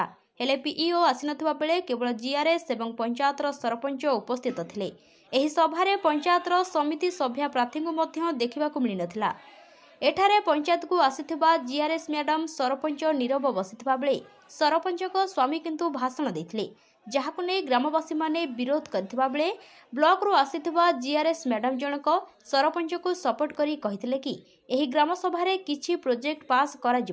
हेले पीईओ आसीनथिबा बेले केवल जीआरएस एवं पंचायतर सरपंच उपस्थित थिले। एही सभारे पंचायतर समिति सभ्या प्रार्थी को मध्य देखिबाकु मिली नथिला। एठारे पंचायत को आसीथिबा जीआरएस मैडम सरपंच नीरव बसिथिबा बेले सरपंच को स्वामी किंतु भाषण देथिले, जहाकु नै ग्रामवासी माने विरोध करथिबा बेले ब्लॉक रु आसीथिबा जीआरएस मैडम जनक सरपंच को सपोर्ट करी कहिथिले कि एही ग्रामसभा रे किछि प्रोजेक्ट पास करा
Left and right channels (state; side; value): identical; both; correlation 1.00